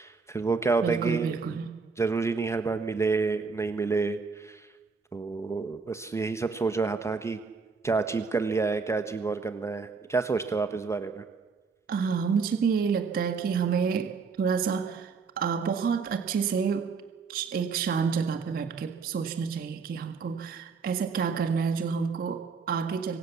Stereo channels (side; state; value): left; quieter; 5.0 dB